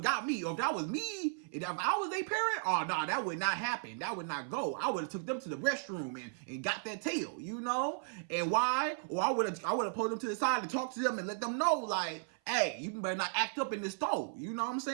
got me. Or if that was me, if I was a parent, oh, no, that would not happen. That would not go. I would have took them to the restroom and got that tail, you know? And why? Or I would have pulled them to the side and talked to them and let them know, like, hey, you better not act up in this store. You know what I'm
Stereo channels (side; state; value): left; silent; 54 dB below the other